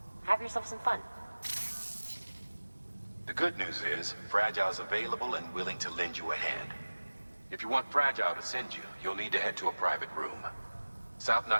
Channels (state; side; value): inverted; both; correlation -1.00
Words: Have yourself some fun. The good news is, Fragile's available and willing to lend you a hand. If you want Fragile to send you, you'll need to head to a private room. South